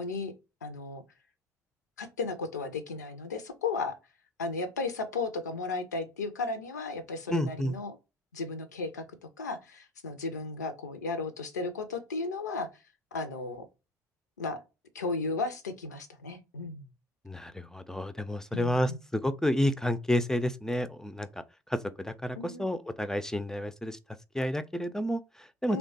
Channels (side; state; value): both; normal; correlation 0.50